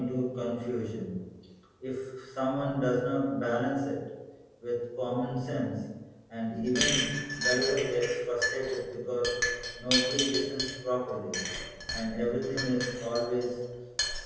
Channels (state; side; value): identical; both; correlation 1.00